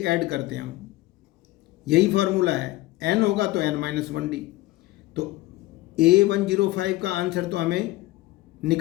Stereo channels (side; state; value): right; quieter; 18.1 dB